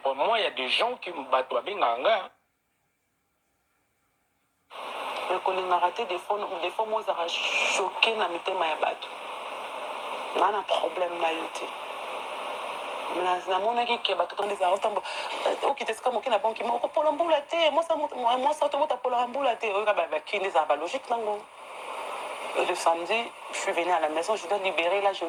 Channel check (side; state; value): both; identical; correlation 1.00